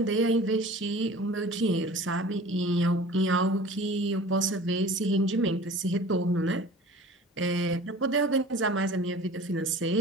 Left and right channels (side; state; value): both; normal; correlation 0.43